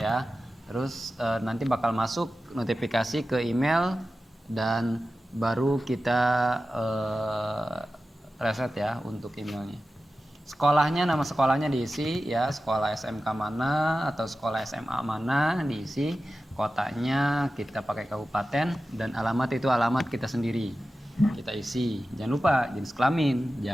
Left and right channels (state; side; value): normal; both; correlation 0.94